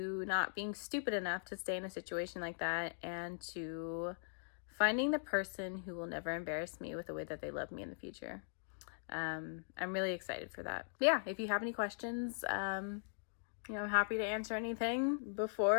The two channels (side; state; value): right; silent; digital silence